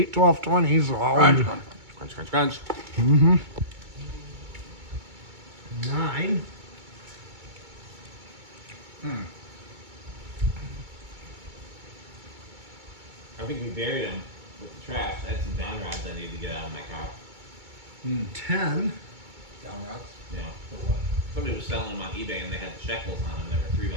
12, 20s. Crunch, crunch, crunch. 9. I think we buried them with the trash. I had some down rods I needed to get out of my car. 10. Down routes? Yeah. For what? Somebody was selling them on eBay and they had the shekels on them. They were $3 a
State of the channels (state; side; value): late; left; 2.2 ms